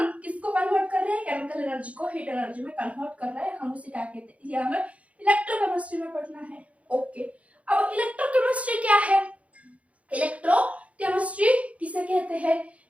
किसको कन्वर्ट कर रहे हैं, केमिकल एनर्जी को हीट एनर्जी में कन्वर्ट कर रहे हैं, हम उसे क्या कहते हैं, ये हमें इलेक्ट्रोकेमिस्ट्री में पढ़ना है। ओके, अब इलेक्ट्रोकेमिस्ट्री क्या है, इलेक्ट्रोकेमिस्ट्री किसे कहते हैं,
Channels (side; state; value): left; late; 0.065 ms